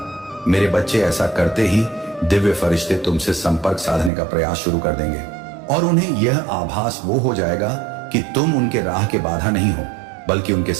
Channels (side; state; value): left; drops out; at 4.1 s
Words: मेरे बच्चे, ऐसा करते ही दिव्य फरिश्ते तुमसे संपर्क साधने का प्रयास शुरू कर देंगे और उन्हें यह आभास वो हो जाएगा कि तुम उनके राह के बाधा नहीं हो, बल्कि उनके